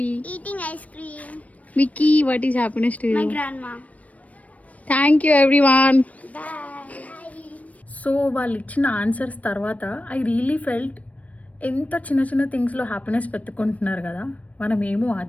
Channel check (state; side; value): late; right; 0.068 ms